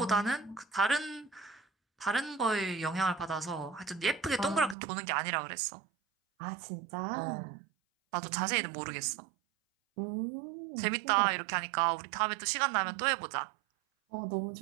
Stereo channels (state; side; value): drops out; left; at 4.8 s